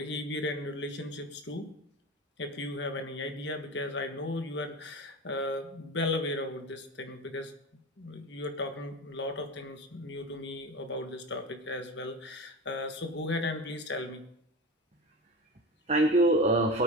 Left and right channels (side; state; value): both; normal; correlation 0.28